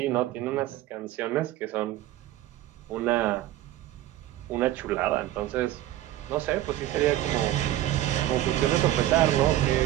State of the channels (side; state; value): left; quieter; 14.1 dB